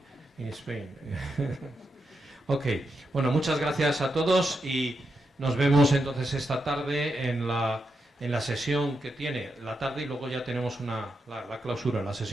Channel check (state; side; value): normal; both; correlation 0.85